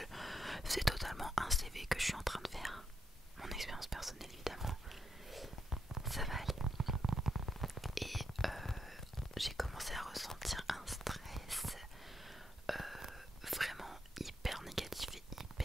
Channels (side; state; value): both; normal; correlation 0.79